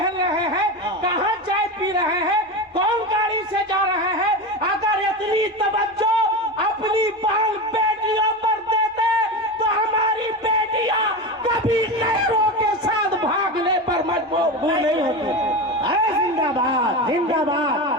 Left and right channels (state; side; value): normal; both; correlation 0.22